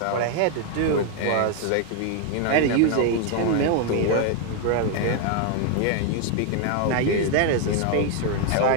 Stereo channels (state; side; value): different; both; correlation 0.00